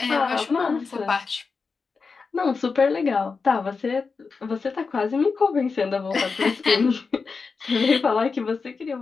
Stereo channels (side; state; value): right; quieter; 4.8 dB